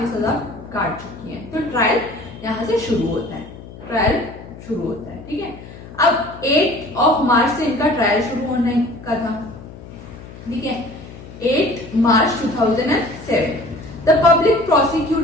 सजा काट चुकी है, तो ट्रायल यहाँ से शुरू होता है, ट्रायल शुरू होता है, ठीक है। अब 8 मार्च से इनका ट्रायल शुरू होने का था, ठीक है। 8 मार्च 2007 the public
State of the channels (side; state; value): left; noise; hum, 16 dB below the sound